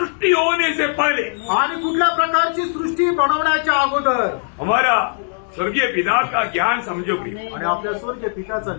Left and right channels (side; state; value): right; silent; 64 dB below the other